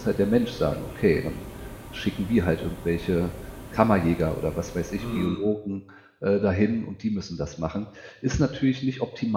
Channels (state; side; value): identical; both; correlation 1.00